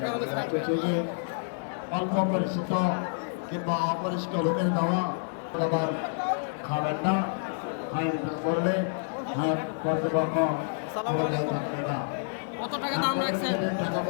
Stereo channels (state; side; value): silent; right; digital silence